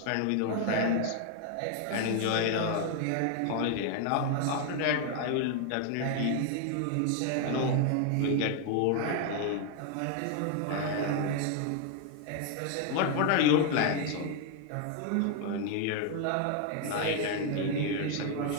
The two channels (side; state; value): both; different; correlation 0.00